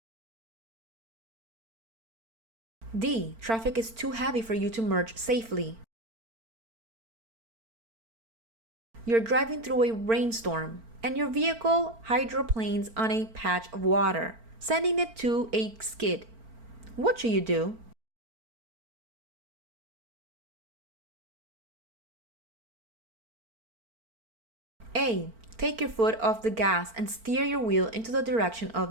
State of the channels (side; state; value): left; late; 4.4 ms